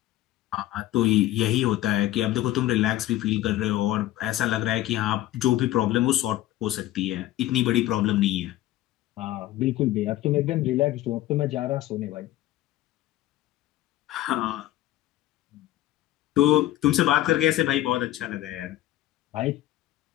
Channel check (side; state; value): right; quieter; 14.9 dB